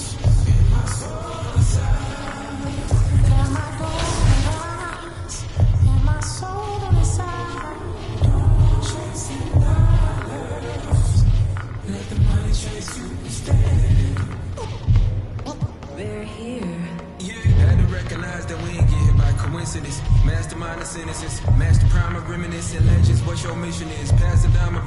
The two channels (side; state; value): both; identical; correlation 1.00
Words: Your mission is passing down my